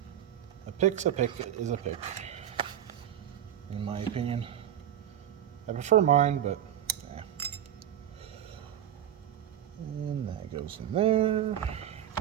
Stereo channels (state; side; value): quieter; left; 10.9 dB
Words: A pick's a pick is a pick, in my opinion. I prefer mine, but yeah. And that goes in there.